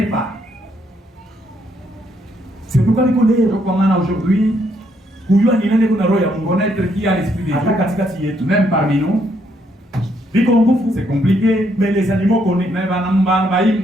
pas. C'est pourquoi les collègues, Donc, on a aujourd'hui connaître qui a l'esprit de Dieu, même parmi nous. C'est compliqué. Mais les animaux connaissent.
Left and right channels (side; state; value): both; normal; correlation 0.73